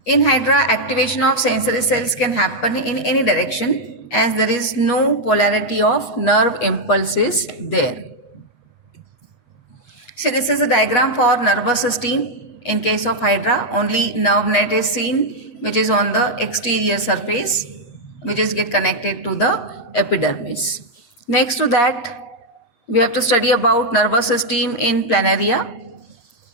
In Hydra, activation of sensory cells can happen in any direction, as there is no polarity of nerve impulses there. So this is a diagram for nervous system. In case of Hydra, only nerve net is seen, which is on the exterior surface, which is get connected to the epidermis. Next to that, we have to study about nervous system in Planaria.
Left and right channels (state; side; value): late; right; 8.3 ms